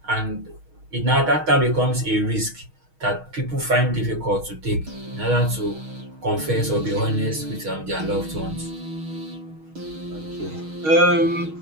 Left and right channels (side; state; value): left; late; 6.4 ms